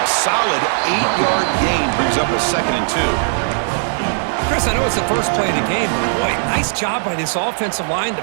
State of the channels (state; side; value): silent; left; 67 dB below the other